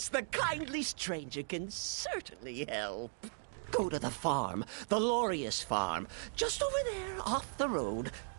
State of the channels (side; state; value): left; silent; digital silence